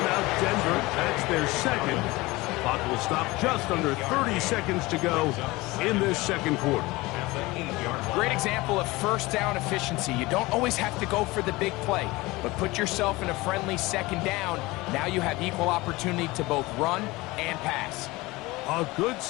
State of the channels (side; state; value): right; quieter; 21.3 dB